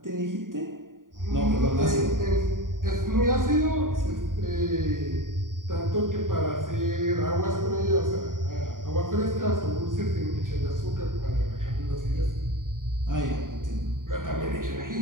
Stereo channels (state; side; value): late; left; 0.89 ms